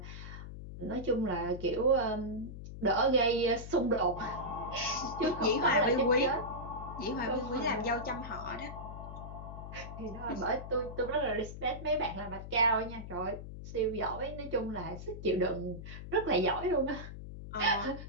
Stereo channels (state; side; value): noise; left; hum, 10 dB below the sound